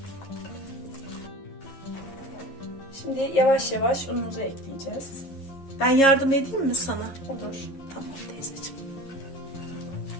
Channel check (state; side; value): late; right; 11 ms